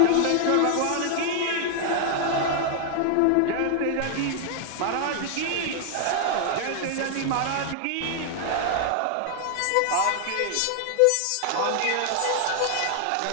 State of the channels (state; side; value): different; both; correlation 0.00